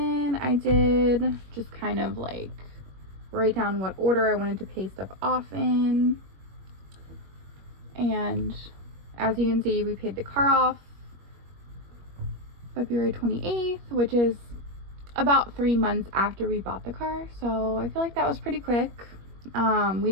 I did just kind of like write down what order I wanted to pay stuff off in. And as you can see, we paid the car off February 28th, which is about 3 months after we bought the car. So I feel like that was pretty quick. We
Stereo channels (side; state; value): left; late; 21 ms